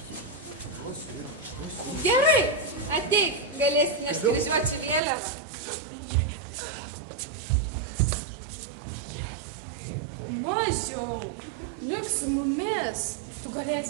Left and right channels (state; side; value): drops out; left; at 5.0 s